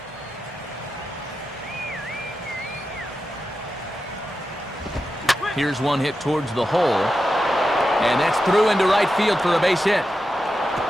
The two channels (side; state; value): both; normal; correlation 0.90